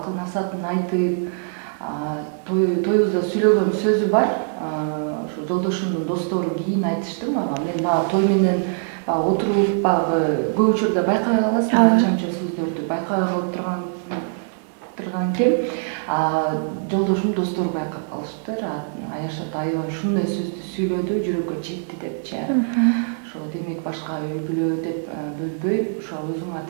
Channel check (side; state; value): left; silent; digital silence